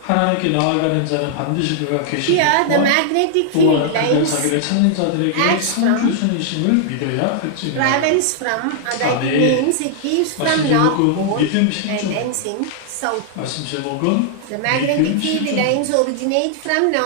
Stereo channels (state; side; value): different; both; correlation -0.01